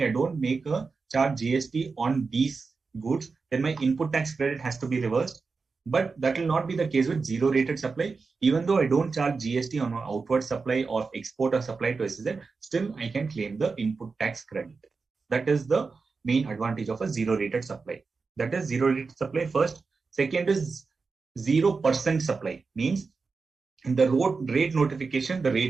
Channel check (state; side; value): quieter; left; 4.5 dB